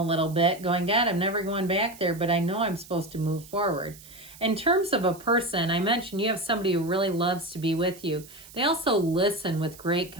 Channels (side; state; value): right; noise; hiss, 20 dB below the sound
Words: little bit, going, God, I'm never going back there, but I know I'm supposed to move forward. In terms of a person, I mentioned you have somebody who really loves to be with you. They also listen with great